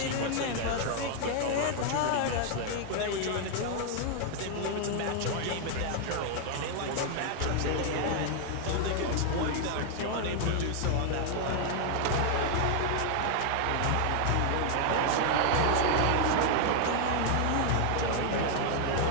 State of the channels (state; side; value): different; both; correlation 0.00